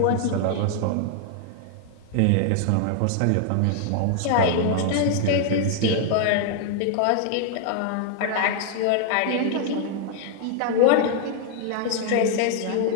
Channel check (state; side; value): different; both; correlation 0.00